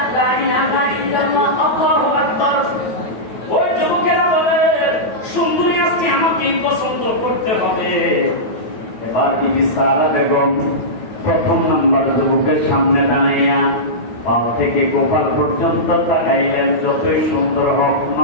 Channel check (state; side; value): late; right; 9.1 ms